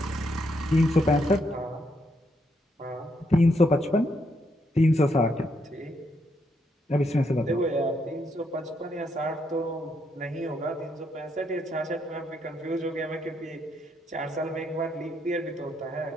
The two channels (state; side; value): normal; both; correlation 0.76